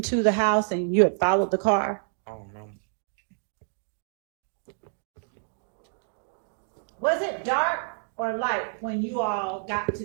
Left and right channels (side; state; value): left; silent; digital silence